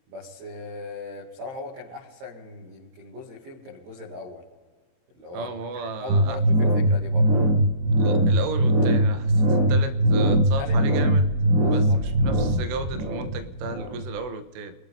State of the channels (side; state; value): left; late; 24 ms